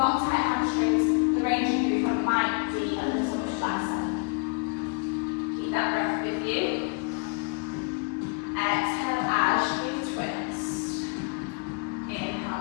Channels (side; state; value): right; quieter; 32.2 dB